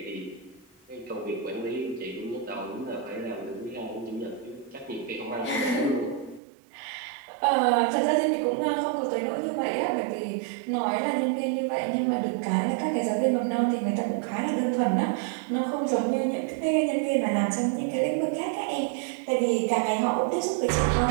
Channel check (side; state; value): left; drops out; at 6.4 s